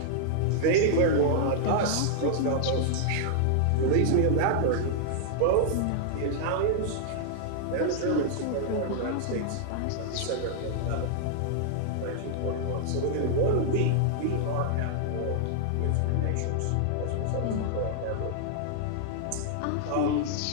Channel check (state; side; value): different; both; correlation -0.01